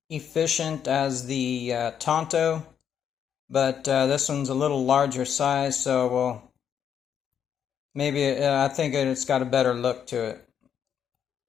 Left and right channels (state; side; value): quieter; right; 8.4 dB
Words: efficient as the Tonto, but this one's a little larger size, so we'll maybe I think it's got a better look to it.